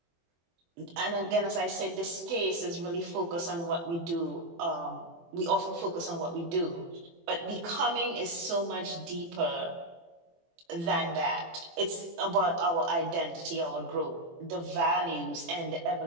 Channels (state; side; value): late; left; 24 ms